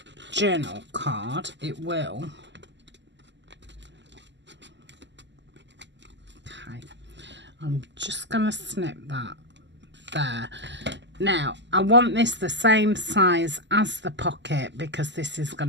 journal card. It will. Okay, I'm just gonna snip that there. Now, I want this the same size as the pocket because this is going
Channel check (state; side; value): late; left; 0.52 ms